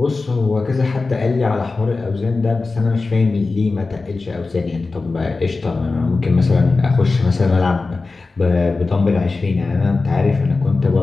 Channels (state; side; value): quieter; right; 3.8 dB